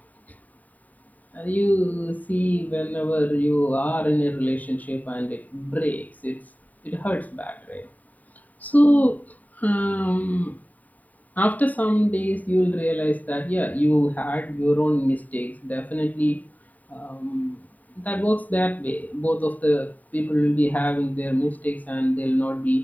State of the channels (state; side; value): late; right; 0.075 ms